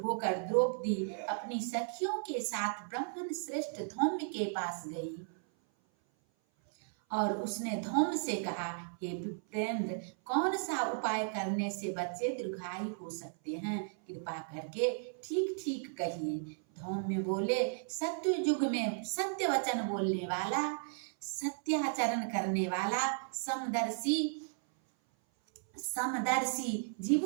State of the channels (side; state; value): left; silent; 54 dB below the other